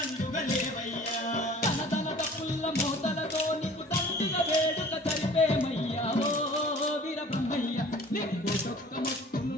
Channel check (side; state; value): both; normal; correlation 0.47